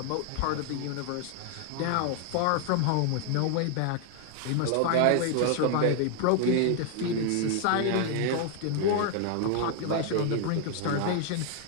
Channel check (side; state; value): both; different; correlation 0.00